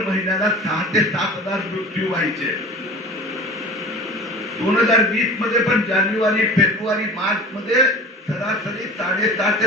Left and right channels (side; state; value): both; normal; correlation 0.38